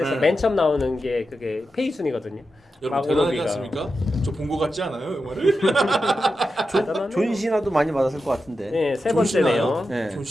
네. 맨 처음 나오는 게 그게 페이 순이거든요. 여러분 대단하지 않습니까? 저 본 거 같지 않아요 영화를? 존 시나도 많이 받았을 것 같은데. 네, 세 존 시나요? 번째네요. 네. 존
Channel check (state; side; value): normal; both; correlation 0.90